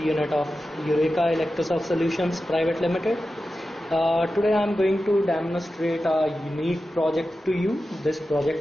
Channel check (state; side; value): normal; both; correlation 0.93